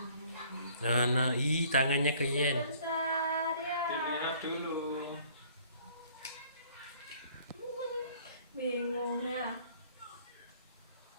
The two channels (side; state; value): both; inverted; correlation -0.57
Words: Nah, tangannya ke Yen. Dilihat dulu. Bingung ya.